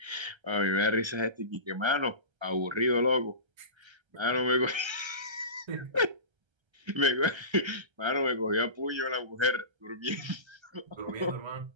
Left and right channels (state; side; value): late; left; 1.3 ms